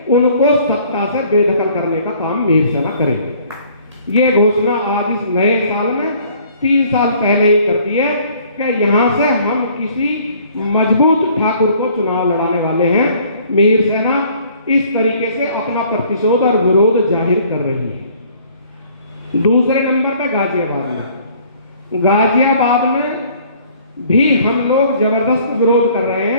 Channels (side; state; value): both; inverted; correlation -0.57